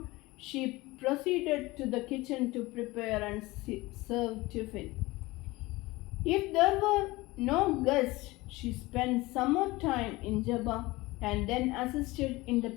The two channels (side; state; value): right; quieter; 20.8 dB